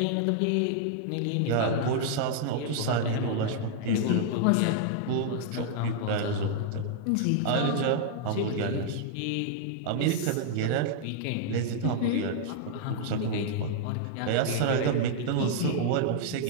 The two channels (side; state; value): both; different; correlation -0.01